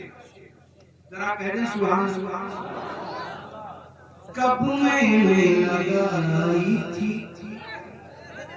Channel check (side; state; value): both; identical; correlation 1.00